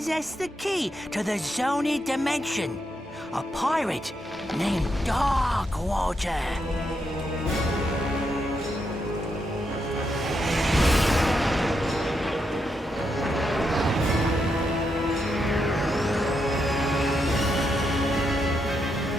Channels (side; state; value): both; normal; correlation 0.81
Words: the key to the Zoni dimension. A pirate named Darkwater.